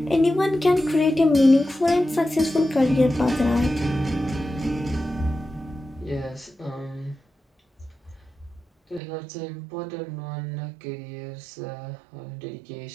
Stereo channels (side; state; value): left; drops out; at 9.0 s